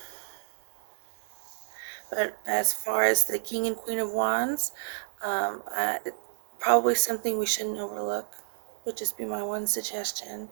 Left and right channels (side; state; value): left; silent; digital silence